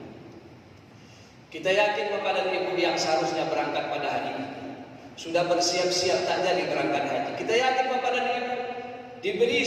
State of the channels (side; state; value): both; identical; correlation 1.00